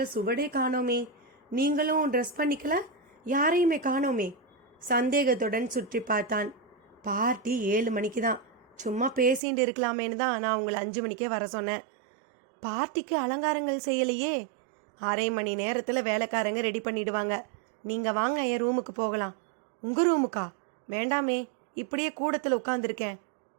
சுவடே காணோமே, நீங்களும் ட்ரெஸ் பண்ணிக்கல, யாரையுமே காணோமே? சந்தேகத்துடன் சுற்றி பார்த்தான். பார்ட்டி 7 மணிக்கு தான், சும்மா பேசிட்டு இருக்கலாமேன்னு தான் நான் உங்களை 5 மணிக்கே வர சொன்னேன். பார்ட்டிக்கு அலங்காரங்கள் செய்யலையே? 1/2 மணி நேரத்தில் வேலைக்காரங்க ரெடி பண்ணிடுவாங்க. நீங்கள் வாங்க, என் ரூமுக்கு போகலாம். உங்கள் ரூமுக்கா? வேண்டாமே, இப்படியே கூடத்தில் உட்காந்துருக்கேன்.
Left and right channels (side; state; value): left; drops out; at 9.4 s